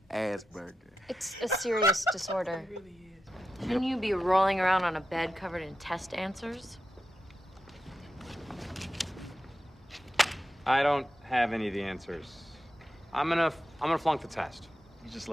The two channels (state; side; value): normal; both; correlation 0.90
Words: Asperger. It's a serious disorder. It really is. Shouldn't you be rolling around on a bed covered in test answers? I don't have any of the answers. I'm gonna flunk the test. You just